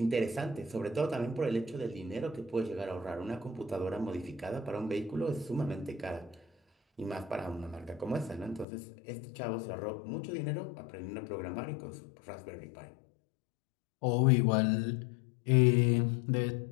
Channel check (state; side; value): drops out; right; at 8.7 s